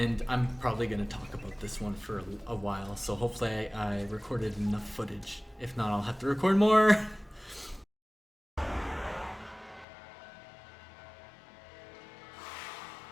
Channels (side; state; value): right; drops out; at 9.9 s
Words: I'm probably going to talk about this one for a while, so hopefully I recorded enough footage. If not, I'll have to record more.